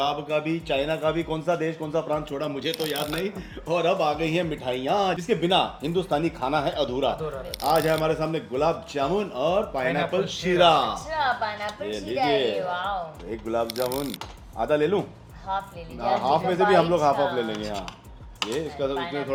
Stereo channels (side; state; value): both; identical; correlation 1.00